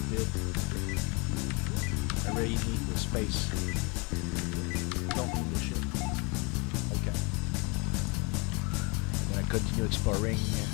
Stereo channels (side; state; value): right; quieter; 30.6 dB